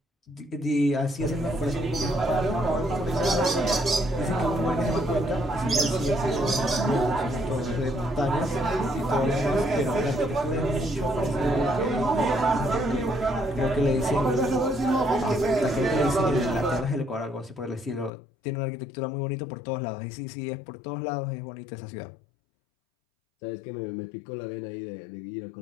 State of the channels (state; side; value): drops out; right; at 18.1 s